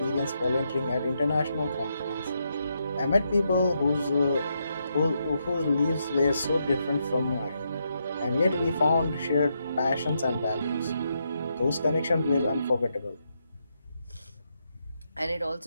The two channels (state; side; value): inverted; both; correlation -0.81